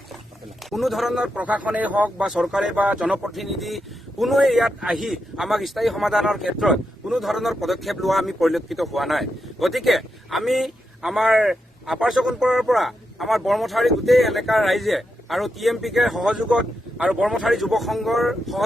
ধৰণৰ প্ৰশাসনেই হওক বা চৰকাৰে বা জনপ্ৰতিনিধি কোনোৱে ইয়াত আহি আমাক স্থায়ী সমাধানৰ ক্ষেত্ৰত কোনো ধৰণৰ পদক্ষেপ লোৱা আমি পৰিলক্ষিত হোৱা নাই। গতিকে আমি আমাৰ আপাৰ চকনপুৰৰ পৰা আমাৰ বৰমথাৰী গোটেই এলেকাৰ ৰাইজে আৰু TMPকে সহযোগত আৰু বৰমথাৰী যুৱ সংঘৰ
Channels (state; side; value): normal; both; correlation 0.85